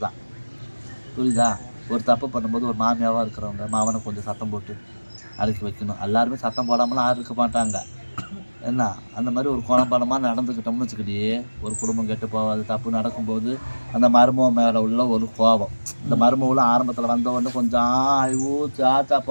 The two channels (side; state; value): both; inverted; correlation -1.00